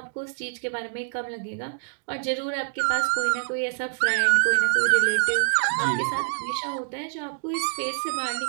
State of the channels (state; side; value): silent; left; digital silence